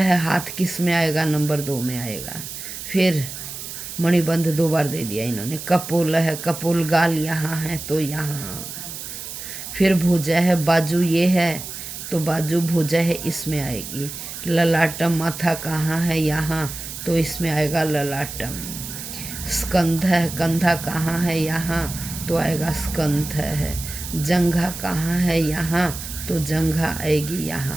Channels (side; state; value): right; noise; hiss, 9 dB below the sound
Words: हाथ किस में आएगा? नंबर 2 में आएगा। फिर मणिबंध 2 बार दे दिया इन्होंने। कपोल है, कपोल गाल यहाँ है तो यहाँ। फिर भुजा है, बाजू ये है तो बाजू भुजा है इसमें आएगी। ललाटम, माथा कहाँ है? यहाँ तो इसमें आएगा ललाटम। स्कंध है, कंधा कहाँ है? यहाँ तो आएगा स्कंध है। जंघा कहाँ है? यहाँ तो जंघा आएगी